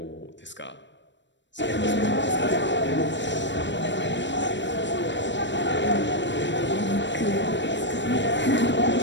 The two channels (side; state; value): right; late; 0.53 ms